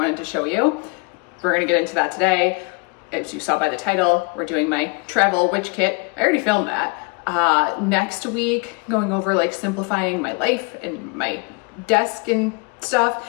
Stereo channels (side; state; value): right; quieter; 31.4 dB